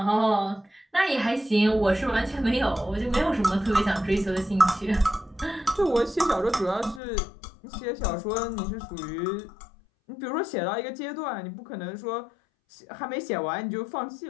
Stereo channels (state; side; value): drops out; right; at 7.0 s